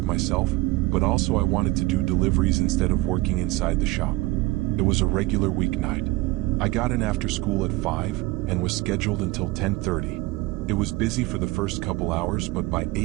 myself, but also I wanted to do deliveries instead of working inside the shop. It was a regular weeknight. I got in after school at 5 and was scheduled until 10:30. It was busy for the first couple hours, but by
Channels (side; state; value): left; quieter; 20.3 dB